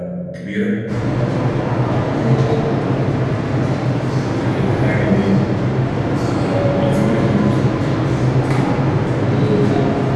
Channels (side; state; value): both; identical; correlation 1.00